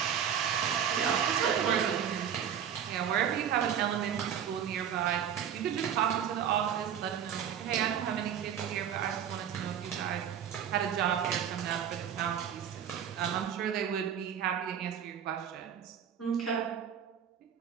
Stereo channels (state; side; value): quieter; left; 8.7 dB